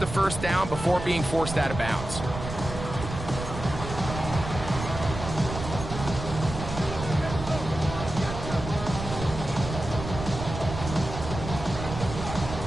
first down before being forced out of bounds.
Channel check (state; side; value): noise; right; rumble, 7 dB below the sound